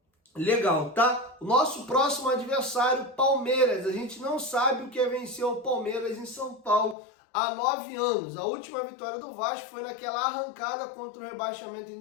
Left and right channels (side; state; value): right; drops out; at 7.0 s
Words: legal, tá? O nosso próximo adversário, Palmeiras. A gente não sabe o que é vencer o Palmeiras em São Paulo há 9 anos. A última vitória do Vasco foi naquela arrancada contra o rebaixamento em